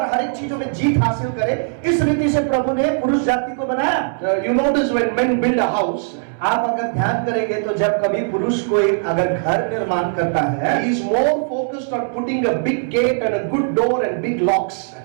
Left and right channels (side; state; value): left; silent; 66 dB below the other